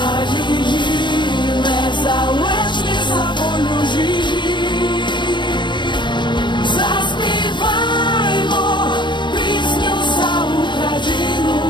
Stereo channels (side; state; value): right; late; 0.22 ms